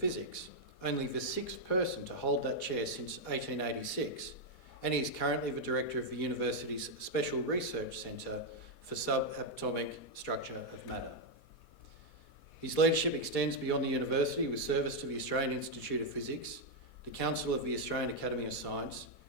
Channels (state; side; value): late; right; 4.2 ms